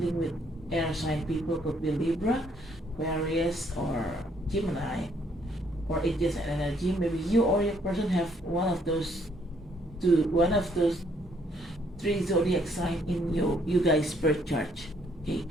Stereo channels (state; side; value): normal; both; correlation 0.67